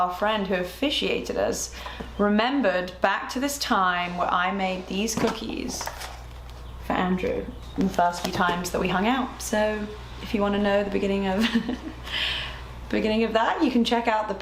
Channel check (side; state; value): both; identical; correlation 1.00